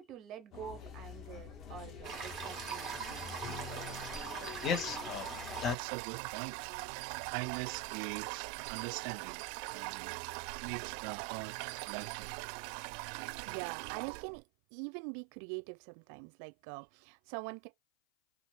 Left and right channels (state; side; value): drops out; left; at 5.8 s